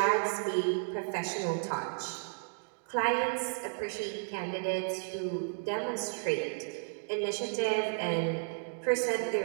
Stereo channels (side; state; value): left; silent; digital silence